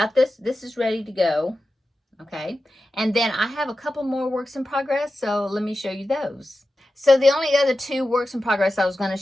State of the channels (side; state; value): both; normal; correlation 0.93